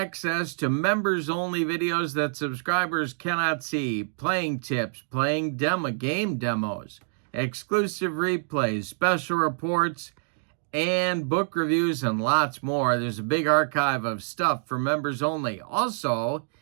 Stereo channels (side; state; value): left; silent; digital silence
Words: to members-only videos that subscribers cannot see, playing tips, playing game demos, exclusive replays, special reports, and book reviews, and lots more. There's a big archive of stuff for members only. Also,